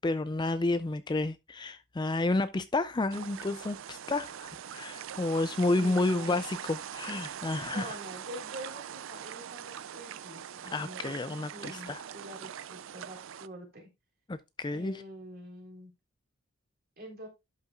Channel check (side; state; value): both; normal; correlation 0.62